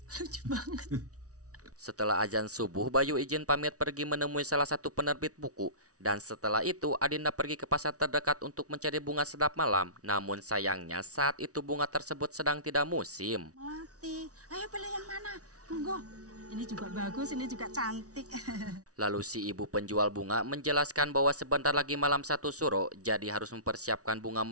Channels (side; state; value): left; late; 0.67 ms